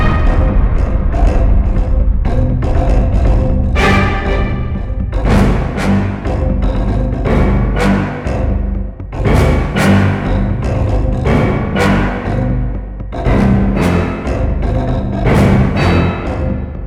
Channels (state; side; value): identical; both; correlation 1.00